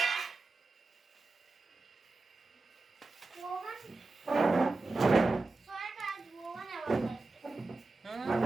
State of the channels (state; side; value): quieter; left; 3.4 dB